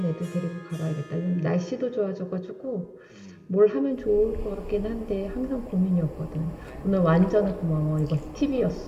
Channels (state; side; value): identical; both; correlation 1.00